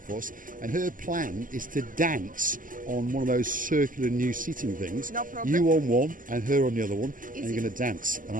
and her plan is to dance on one of those circular new seating things. No problem. You on one, and her on the other one, Easy. and you're going to dance, and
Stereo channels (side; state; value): left; late; 0.39 ms